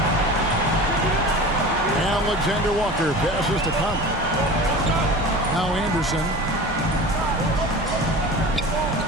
Alexander Walker passes to Conley. Now Anderson.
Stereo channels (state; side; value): normal; both; correlation 0.35